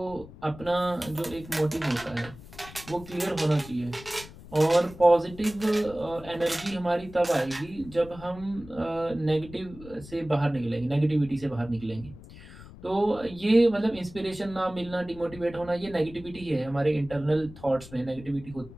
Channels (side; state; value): left; noise; rumble, 17 dB below the sound